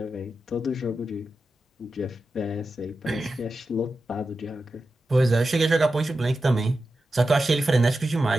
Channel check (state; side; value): normal; both; correlation 0.91